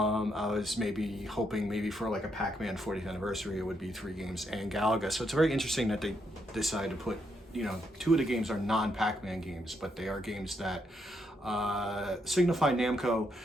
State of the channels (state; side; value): normal; both; correlation 0.78